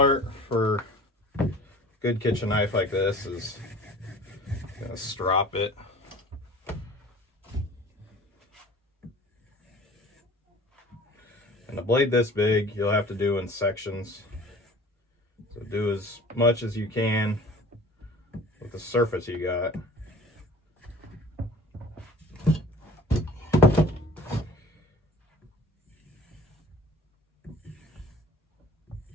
for a good kitchen knife like this is gonna strop it. And a blade this big, you'll have to do in sections. So do as much as you can with the surface you got.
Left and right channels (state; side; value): normal; both; correlation 0.45